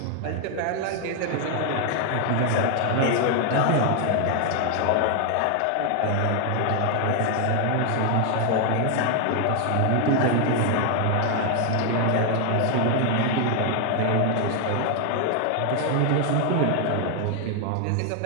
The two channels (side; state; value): both; different; correlation 0.00